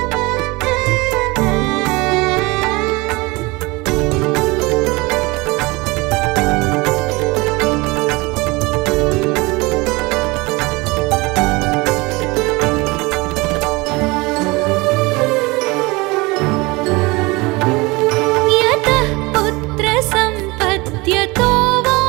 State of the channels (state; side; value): quieter; left; 24.0 dB